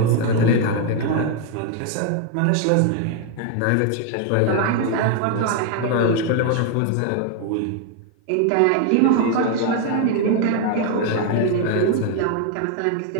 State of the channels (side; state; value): both; different; correlation 0.01